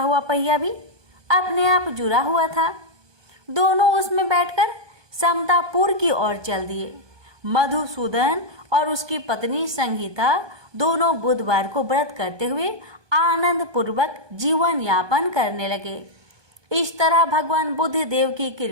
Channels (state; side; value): late; left; 1.2 ms